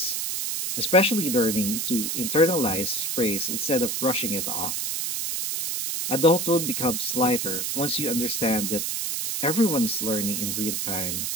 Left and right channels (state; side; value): noise; right; hiss, 1 dB below the sound